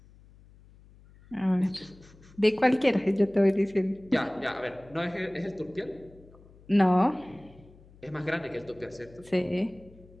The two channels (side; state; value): left; noise; hum, 24 dB below the sound